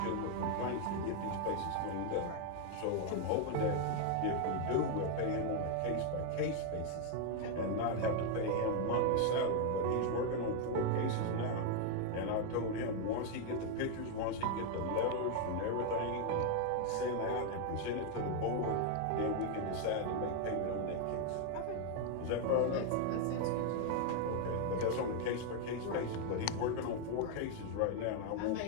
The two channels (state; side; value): different; both; correlation 0.01